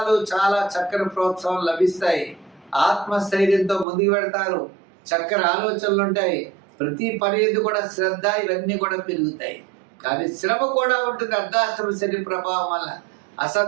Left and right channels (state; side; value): drops out; left; at 3.9 s